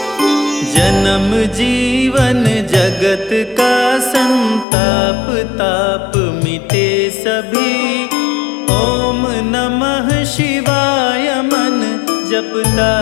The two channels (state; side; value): drops out; right; at 4.7 s